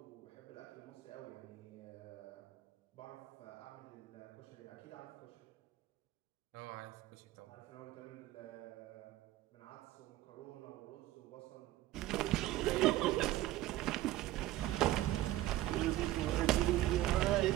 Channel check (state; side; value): quieter; left; 15.3 dB